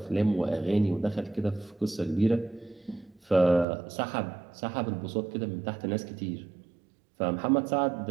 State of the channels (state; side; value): drops out; left; at 3.7 s